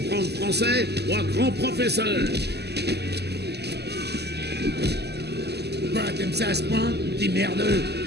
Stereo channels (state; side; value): late; left; 0.48 ms